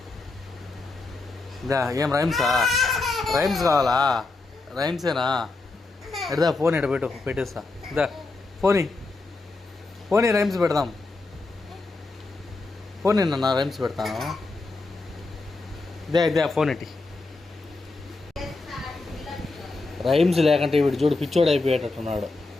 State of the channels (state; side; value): quieter; right; 3.5 dB